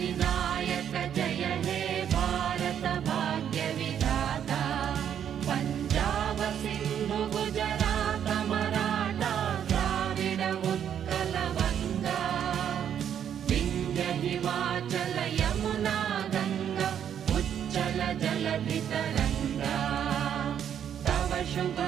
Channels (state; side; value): quieter; left; 9.1 dB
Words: जय हे भारत भाग्य विधाता पंजाब सिंधु गुजरात मराठा द्राविड उत्कल गंगा विंध्य हिमाचल यमुना गंगा उच्चल जलधि तरंगा तव शुभ